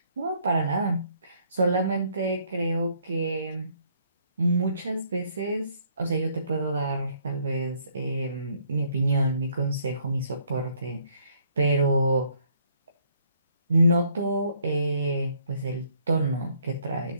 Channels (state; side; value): inverted; both; correlation -0.66